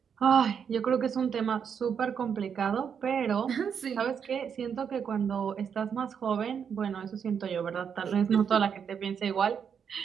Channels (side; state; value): left; quieter; 7.3 dB